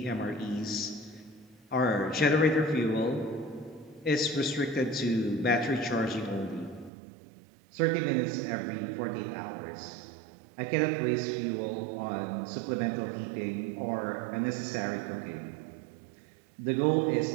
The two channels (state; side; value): drops out; left; at 6.9 s